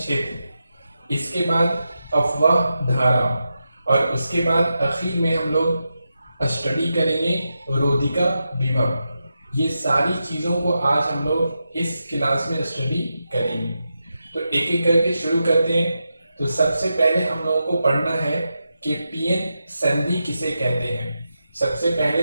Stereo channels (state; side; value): inverted; both; correlation -0.88